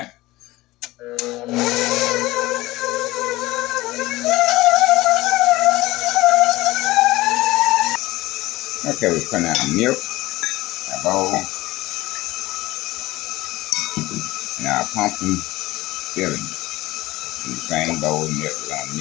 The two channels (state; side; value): quieter; right; 18.7 dB